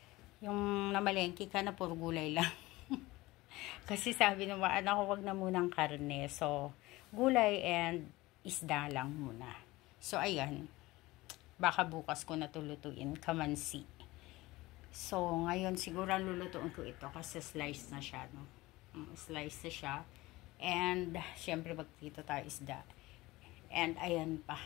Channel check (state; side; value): quieter; right; 19.7 dB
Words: Yung namalengke ka na puro gulay lang. Kasi sabi ng mga anak ko, wag na munang karne. So, gulay and isda lang muna. So, ayan. Baka bukas ko na tulutuin. Kamansi. So, ngayon siguro lulutuin ko ito kasi slice na siya, no? Slice na siya. And, syempre, magtito tayo isda. And, ayan pa.